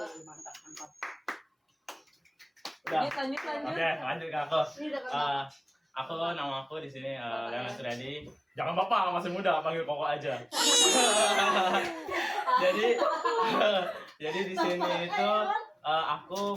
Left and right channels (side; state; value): both; identical; correlation 1.00